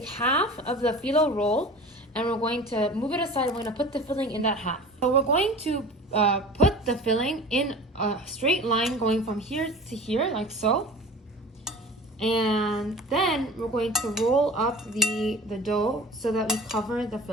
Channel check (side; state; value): both; normal; correlation 0.40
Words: half of the phyllo roll and we're going to move it aside. We're going to put the filling in that half. So we're going to put the filling in a straight line going from here to here, like so. And then we're going to roll up the dough so that we cover the